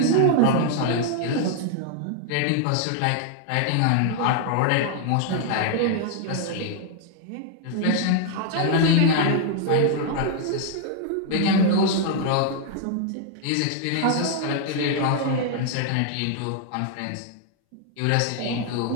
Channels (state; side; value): different; both; correlation 0.00